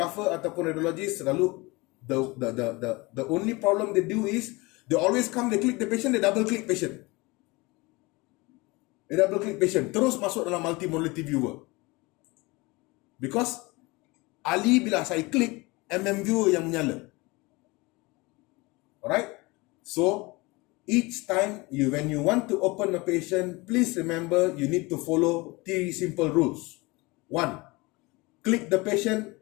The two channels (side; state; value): right; quieter; 24.1 dB